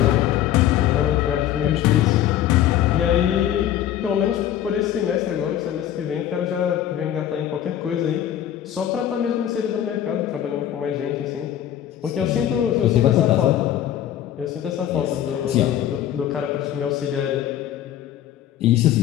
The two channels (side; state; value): right; quieter; 11.3 dB